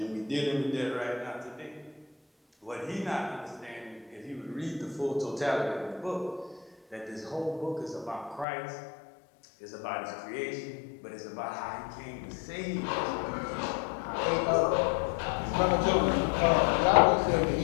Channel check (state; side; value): drops out; right; at 8.5 s